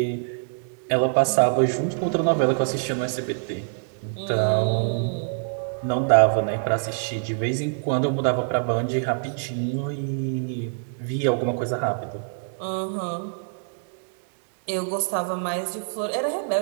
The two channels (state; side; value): silent; left; digital silence